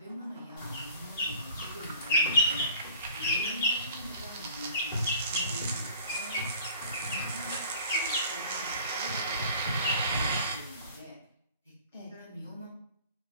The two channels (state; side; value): inverted; both; correlation -0.48